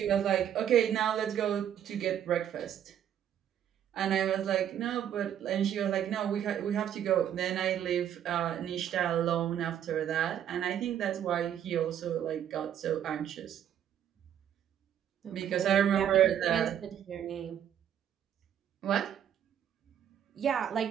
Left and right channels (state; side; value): quieter; left; 9.9 dB